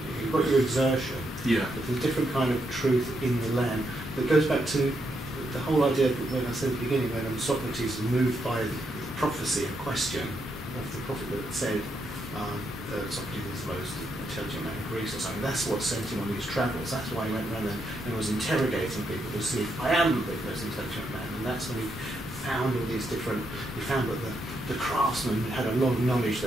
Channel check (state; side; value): normal; both; correlation 0.80